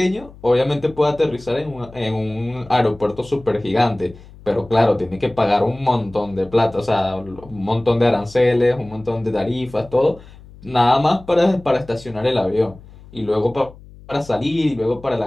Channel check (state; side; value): noise; left; hum, 21 dB below the sound